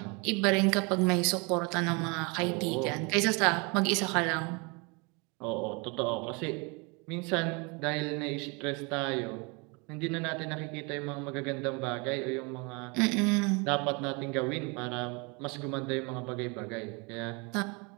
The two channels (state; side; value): quieter; left; 30.3 dB